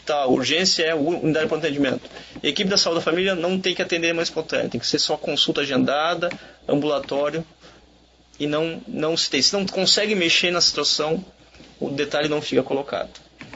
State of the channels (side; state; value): both; identical; correlation 1.00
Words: urgência é a unidade de pronto atendimento. A equipe da saúde da família não tem que atender mais espontânea, tem que ser só consulta agendada, ambulatório, e não se tem. Se não consegue mexer na situação, o detalhe não fica colocado.